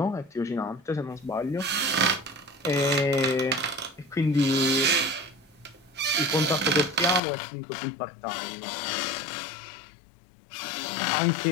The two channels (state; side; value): drops out; right; at 7.2 s